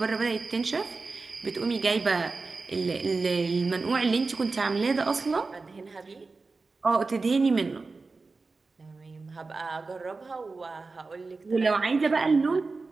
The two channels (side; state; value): left; quieter; 3.9 dB